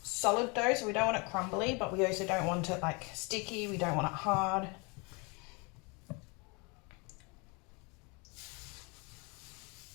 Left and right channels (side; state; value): right; quieter; 30.2 dB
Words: solid dough, so we don't want it crumbly, but we also don't want it like sticky, we don't want it hard.